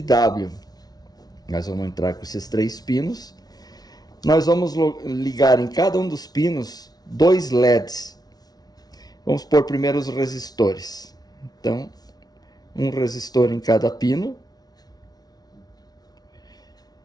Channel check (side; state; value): right; late; 0.19 ms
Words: W. Nós vamos entrar com esses 3 pinos. Nós vamos ligar em cada um dos pinos 2 LEDs. Vamos pôr primeiro os resistores. Então, um resistor em cada pino.